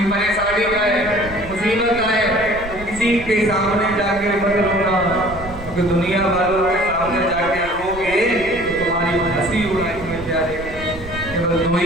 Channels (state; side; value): noise; right; rumble, 13 dB below the sound